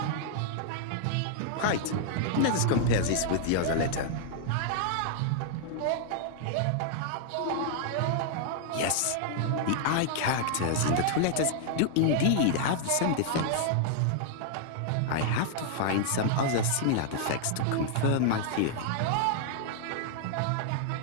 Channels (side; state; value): both; different; correlation -0.01